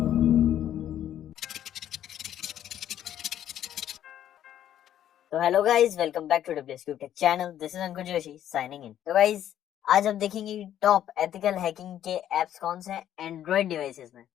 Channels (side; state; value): right; quieter; 11.1 dB